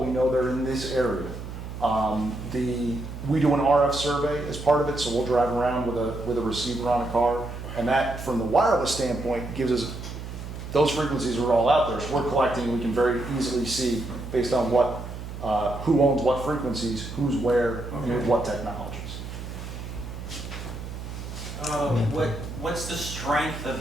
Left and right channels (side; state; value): right; noise; hum, 9 dB below the sound